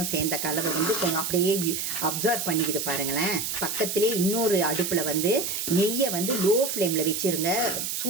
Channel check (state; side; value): noise; right; hiss, 3 dB below the sound